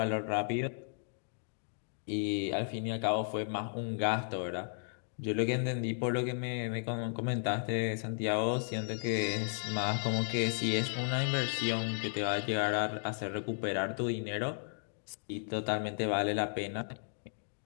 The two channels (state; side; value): silent; right; digital silence